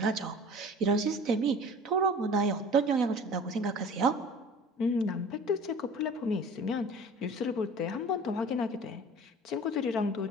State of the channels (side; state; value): both; normal; correlation 0.43